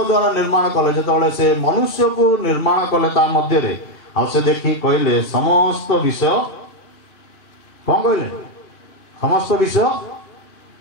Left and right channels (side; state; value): right; late; 2.5 ms